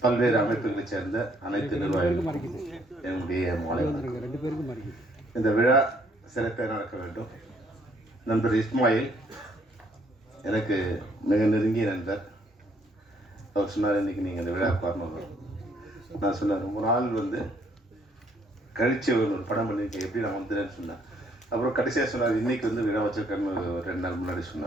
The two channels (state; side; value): normal; both; correlation 0.66